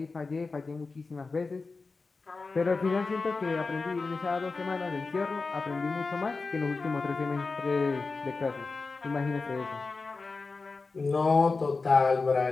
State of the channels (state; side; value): quieter; right; 4.0 dB